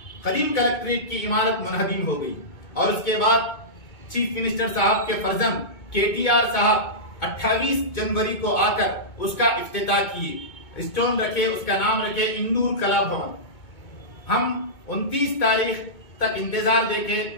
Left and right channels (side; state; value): right; late; 2.2 ms